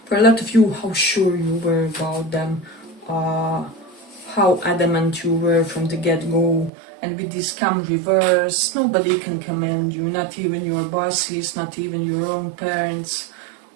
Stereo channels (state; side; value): drops out; left; at 6.7 s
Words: For a lot of you, how sure you were about them, how adamant you were from the get-go. And with this come reverse, nobody can commend you, not even your bosses, not even your own parents.